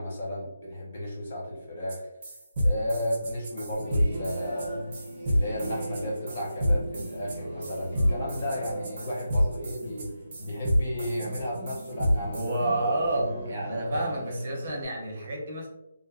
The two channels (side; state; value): both; inverted; correlation -0.87